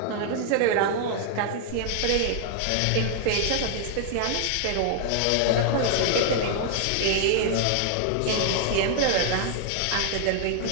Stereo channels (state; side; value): different; both; correlation 0.00